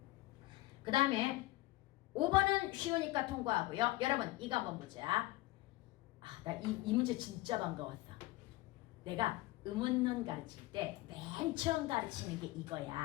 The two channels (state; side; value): quieter; right; 18.9 dB